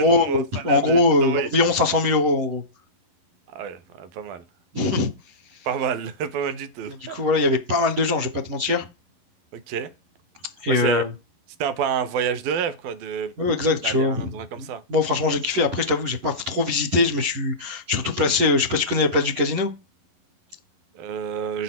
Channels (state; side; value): late; left; 11 ms